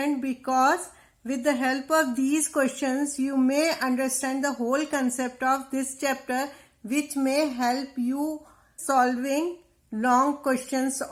because with the help of these questions you may understand the whole concept of this chapter, which may help you solving long questions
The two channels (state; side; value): identical; both; correlation 1.00